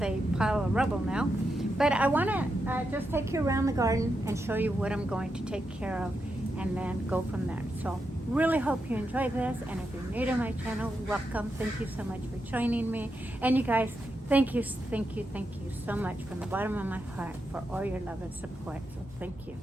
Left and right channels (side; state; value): both; normal; correlation 0.85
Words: a pile of rubble now. But I want to just take you around the garden and show you what I'm going to take care of and then go from there. So really hope you enjoy this, and if you're new to my channel, welcome. Thank you so much for joining me. And you guys, thank you so much from the bottom of my heart for all your love and support. So thank you.